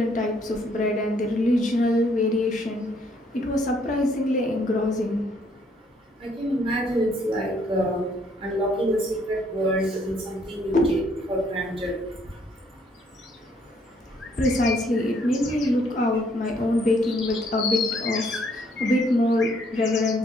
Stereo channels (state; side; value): normal; both; correlation 0.67